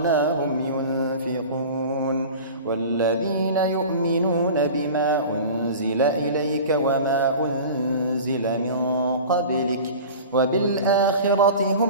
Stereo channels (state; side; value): inverted; both; correlation -0.37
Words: ينفقون والذين يؤمنون بما أنزل إليك وما أنزل من قبلك وبالآخرة